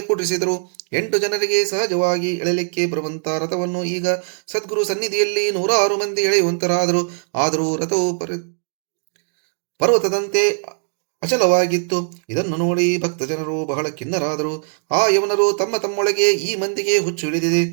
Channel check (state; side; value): silent; left; 56 dB below the other